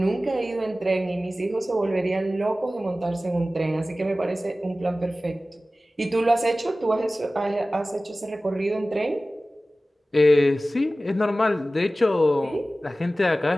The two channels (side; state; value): both; normal; correlation 0.96